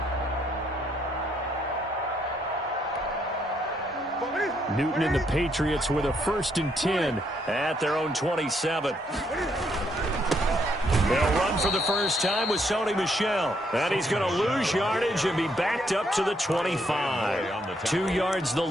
Newton and the Patriots with a 1st and 10 at their own 27. They'll run for the first time with Sony Michel. And he's going to lose yardage and be backed up to the 25. 2 yards the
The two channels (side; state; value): both; normal; correlation 0.73